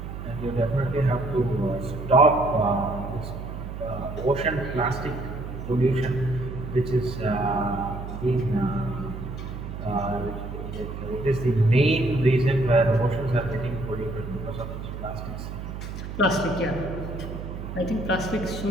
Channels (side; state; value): right; noise; hum, 8 dB below the sound